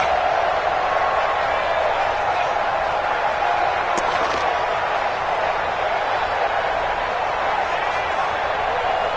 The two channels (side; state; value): both; identical; correlation 1.00